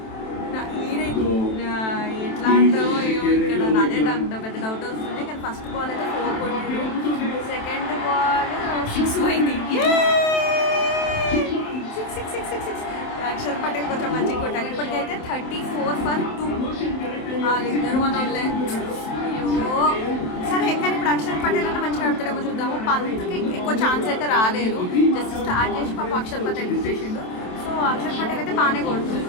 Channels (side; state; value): right; late; 27 ms